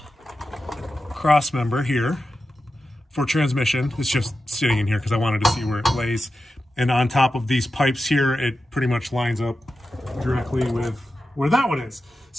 cross member here for transmission. It's just sitting in here because I wanted to see where it lays. And on top of these pipes here, it pretty much lines up directly with where that one is.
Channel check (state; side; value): normal; both; correlation 0.91